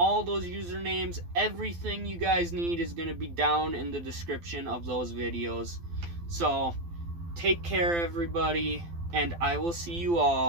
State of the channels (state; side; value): late; left; 12 ms